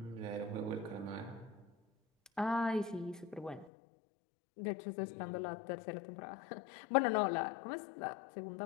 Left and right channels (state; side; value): drops out; right; at 3.7 s